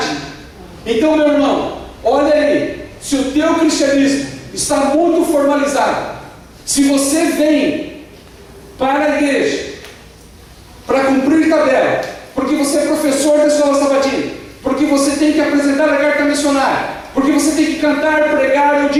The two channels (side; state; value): both; identical; correlation 1.00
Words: Então, meu irmão, olha aí, se o teu cristianismo está muito formalizado, se você vem para a igreja para cumprir tabela, porque você é professor da escola sabatina, porque você tem que apresentar a carta missionária, porque você tem que cantar, pregar ou